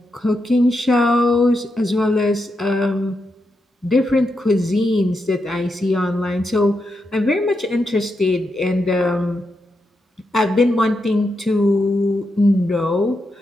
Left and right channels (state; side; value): normal; both; correlation 0.85